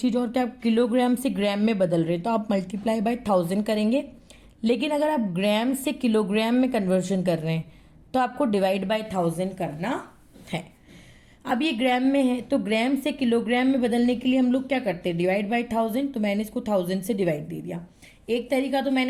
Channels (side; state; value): both; identical; correlation 1.00